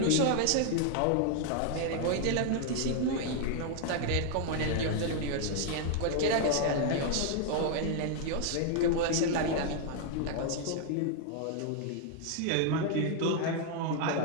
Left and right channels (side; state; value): both; different; correlation 0.00